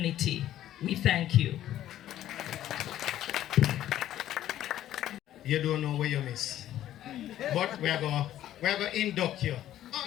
We thank you. You don't know where you miss. But we're going to induct you. Oh,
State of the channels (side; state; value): right; quieter; 12.6 dB